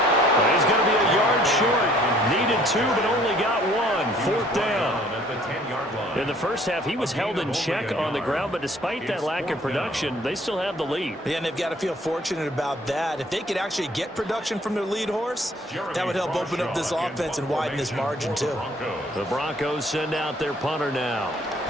Well, he's going to be a yard short. Needed 2, but only got 1. 4th down. In the first half, he was held in check on the ground, but despite that lack of production, they still have the lead. Yeah, and they've got to feel fortunate about that. If they could actually get production from their lead horse, that would help open up this offense and widen this margin, too. The Broncos send out their punter now,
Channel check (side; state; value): both; normal; correlation 0.59